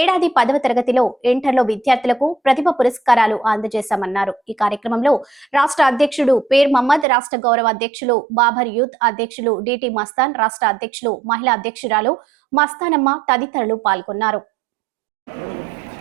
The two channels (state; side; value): drops out; left; at 7.1 s